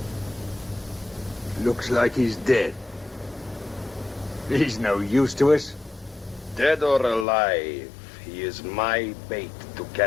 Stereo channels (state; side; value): drops out; right; at 7.2 s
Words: Looks like he's dead. He's no use to us. Dead or alive, he is my bait to